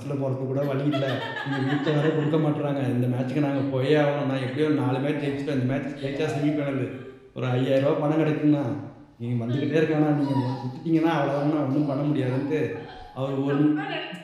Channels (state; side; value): identical; both; correlation 1.00